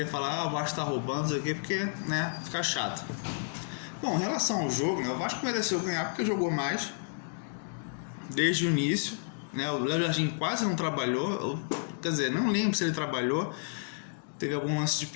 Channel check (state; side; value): silent; right; digital silence